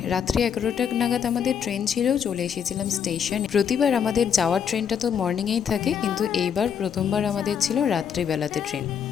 রাত্রি 11টা নাগাদ আমাদের ট্রেন ছিল, চলে এসেছিলাম স্টেশন। প্রতিবার আমাদের যাওয়ার ট্রেনটা তো মর্নিংয়েই থাকে, কিন্তু এইবার প্রথমবার আমাদের ছিল রাত্রিবেলাতে ট্রেন।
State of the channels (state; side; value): quieter; right; 7.8 dB